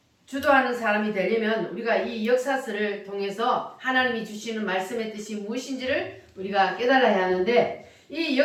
주도하는 사람이 되려면 우리가 이 역사서를 통해서 하나님이 주시는 말씀의 뜻이 무엇인지를 우리가 깨달아야 하는데, 이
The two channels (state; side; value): identical; both; correlation 1.00